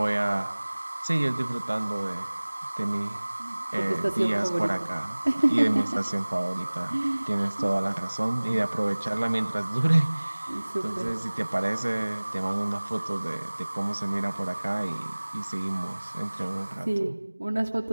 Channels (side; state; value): both; inverted; correlation -1.00